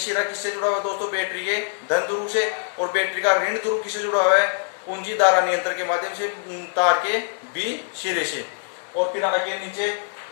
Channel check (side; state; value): right; silent; digital silence